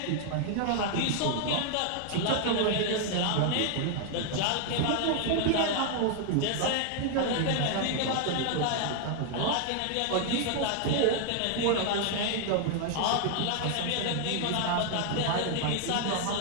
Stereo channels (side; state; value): both; different; correlation 0.00